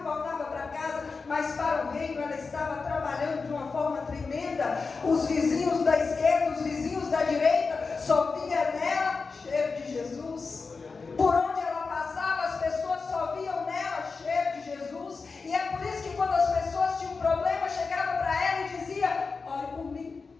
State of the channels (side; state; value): right; quieter; 4.5 dB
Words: voltava para casa, mas para o Reino ela estava trabalhando de uma forma tremenda. Os vizinhos da esquerda, os vizinhos da direita, só vinha nela cheiro de Jesus. Por onde ela passava, as pessoas só viam nela cheiro de Jesus. E é por isso que quando as pessoas tinham um problema, chegavam para ela e dizia: ore por mim,